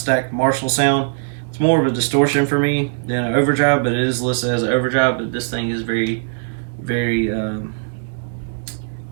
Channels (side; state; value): left; silent; 66 dB below the other